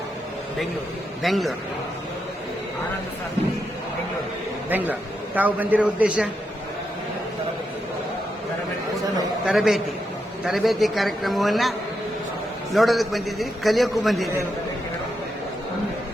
ಬೆಂಗಳೂರು. ತಾವು ಬಂದಿರೋ ಉದ್ದೇಶ? ತರಬೇತಿ ಕಾರ್ಯಕ್ರಮವನ್ನು ನೋಡೋದಕ್ಕೆ ಬಂದಿದ್ದೀರಿ, ಕಲಿಯೋಕ್ಕೂ ಬಂದಿದ್ದೀರಿ.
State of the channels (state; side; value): normal; both; correlation 0.83